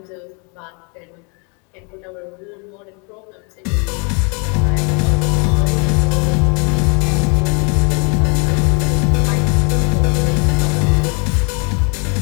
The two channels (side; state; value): right; quieter; 33.9 dB